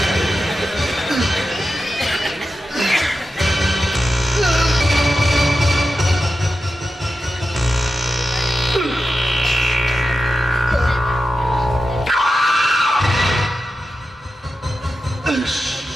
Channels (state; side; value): normal; both; correlation 0.91